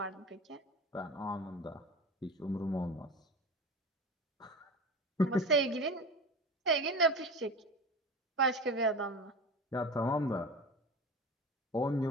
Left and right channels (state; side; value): normal; both; correlation 0.30